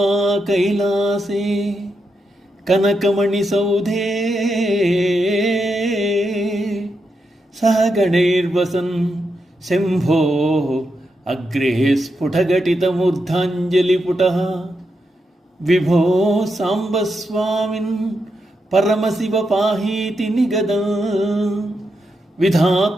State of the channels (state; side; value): normal; both; correlation 0.85